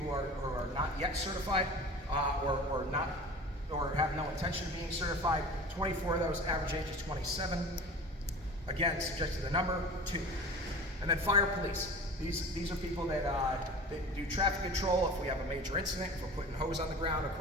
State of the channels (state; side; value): normal; both; correlation 0.38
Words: who are not yet certified or have no intention of being certified. 24 of those, average age is 27. Again, subject to the number, 2. And then fire police. These are people that do traffic control if we have a major incident, if we're putting hose on the ground